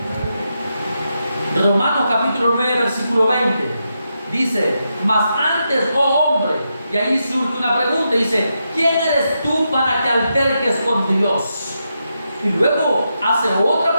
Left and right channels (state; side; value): inverted; both; correlation -0.85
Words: Romanos capítulo 9, versículo 20. Dice, mas antes, oh hombre, y ahí surge una pregunta, dice, ¿quién eres tú para que alterques con Dios? Y luego hace otra